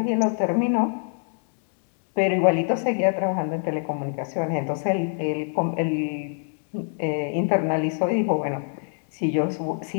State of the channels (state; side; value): silent; right; 62 dB below the other